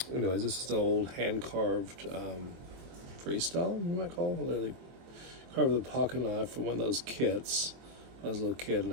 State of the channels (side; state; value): left; late; 23 ms